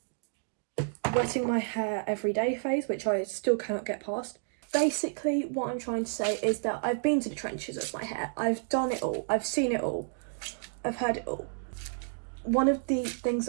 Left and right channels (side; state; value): left; silent; digital silence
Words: wetting my hair every day phase, which I still cannot get past. Basically what I'm trying to say is that I've been to the trenches of my hair. I've done it all, I've seen it all, I've heard it all. One of the